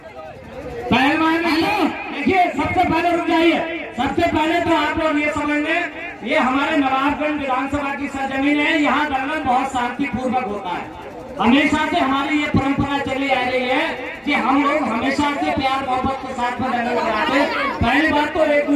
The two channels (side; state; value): both; identical; correlation 1.00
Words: पहलवान देखिए सबसे पहले रुक जाइए, सबसे पहले तो आप लोग ये समझ लें ये हमारे नवाबगंज विधानसभा की सरजमीन है, यहाँ दंगल बहुत शांतिपूर्वक होता है। हमेशा से हमारी ये परंपरा चली आ रही है कि हम लोग हमेशा से प्यार मोहब्बत के साथ में दंगल कराते हैं। पहली बात तो एक